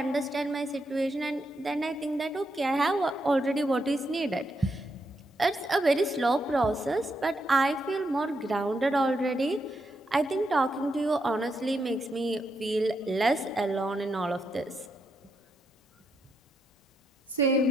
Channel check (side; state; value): both; normal; correlation 0.81